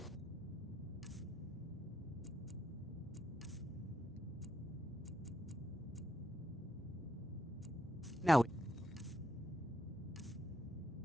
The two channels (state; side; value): normal; both; correlation 0.78